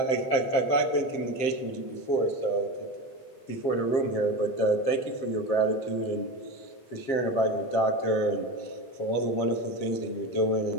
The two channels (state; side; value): late; right; 7.5 ms